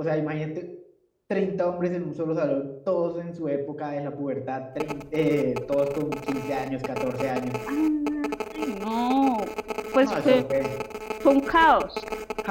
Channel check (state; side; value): identical; both; correlation 1.00